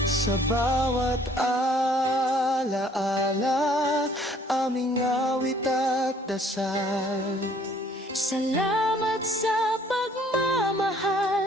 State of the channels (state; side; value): normal; both; correlation 0.59